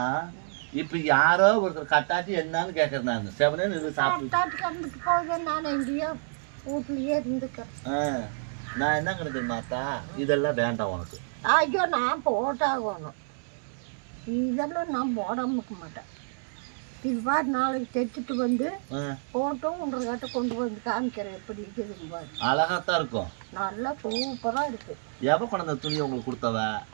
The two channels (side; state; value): left; silent; 59 dB below the other